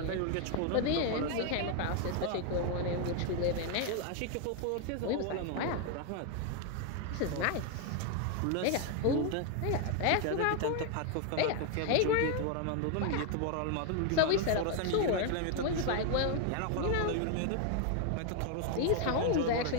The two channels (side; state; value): both; different; correlation 0.01